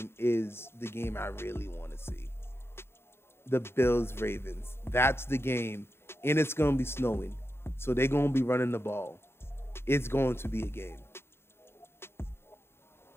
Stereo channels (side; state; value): right; late; 0.12 ms